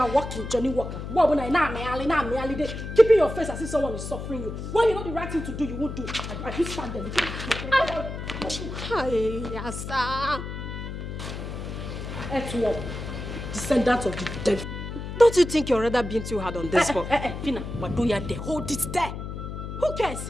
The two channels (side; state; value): left; noise; hum, 7 dB below the sound